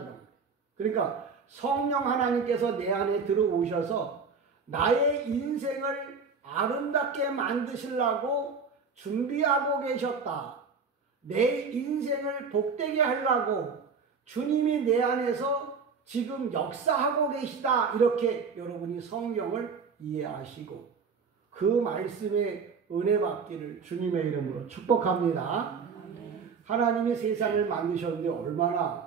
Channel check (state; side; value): quieter; left; 5.3 dB